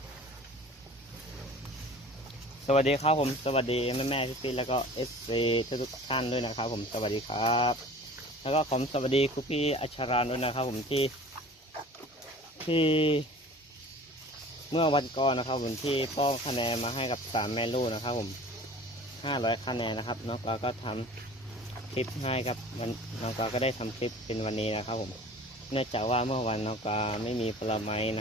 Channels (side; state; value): both; normal; correlation 0.44